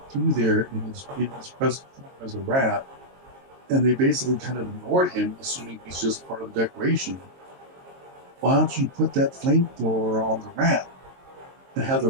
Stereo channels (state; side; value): late; left; 22 ms